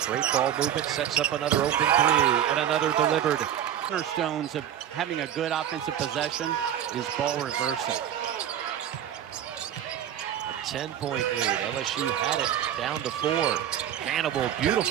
Great ball movement, sets up another open 3, and another delivered. Cornerstones of having a good offensive possession is ball reversal. A 10-point lead. LSU had it down to 4. Hannibal,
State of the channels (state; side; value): quieter; left; 10.5 dB